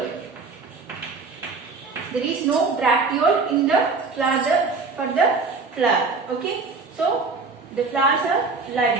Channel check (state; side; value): quieter; left; 4.2 dB